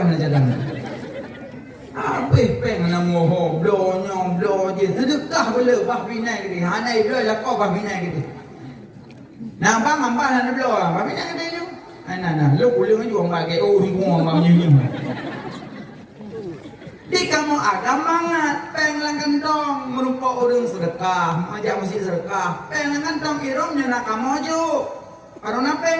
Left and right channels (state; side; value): identical; both; correlation 1.00